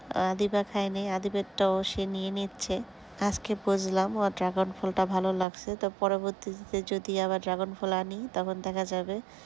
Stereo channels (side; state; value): left; drops out; at 5.5 s